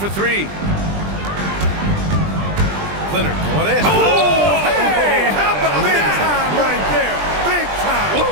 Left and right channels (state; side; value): late; left; 20 ms